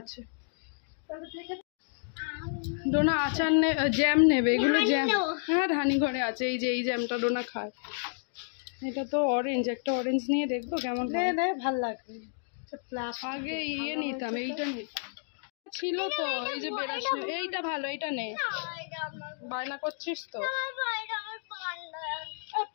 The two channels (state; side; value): silent; right; digital silence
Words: ডোনা আচার জ্যাম নেবে, এগুলো জ্যাম। হ্যাঁ ধানি ঘরে আছে, এই যে এই জ্যামটা ডোনা খায়। এটা তো অরেঞ্জ, একটা অরেঞ্জ নিয়ে দেখবো কেমন হয়। ভালো লাগবে। আগে ইয়ে নিতাম, এইটা নিতাম ছিল তো, এই যে বেরাস। এইটা ভালো, এইটা নে। বায়না করছিস তো।